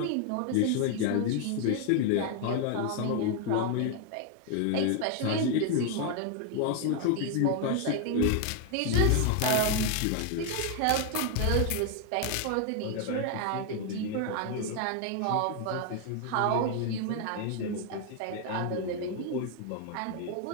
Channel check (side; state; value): both; different; correlation 0.01